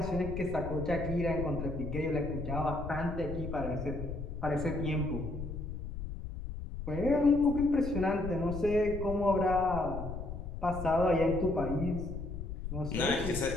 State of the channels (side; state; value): left; noise; rumble, 7 dB below the sound